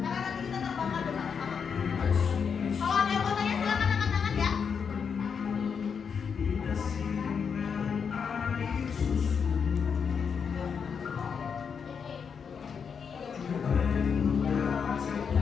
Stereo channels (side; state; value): right; quieter; 6.5 dB